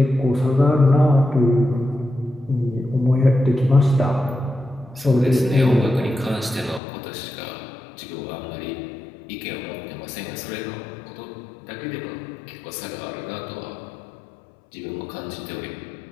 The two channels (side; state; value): right; drops out; at 6.8 s